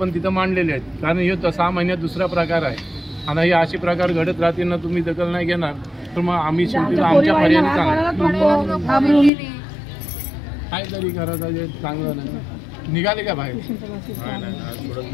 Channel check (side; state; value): right; drops out; at 9.3 s